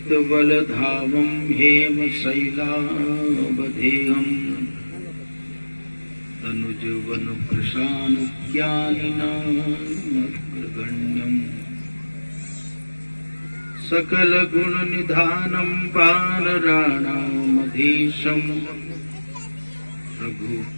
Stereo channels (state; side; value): inverted; both; correlation -1.00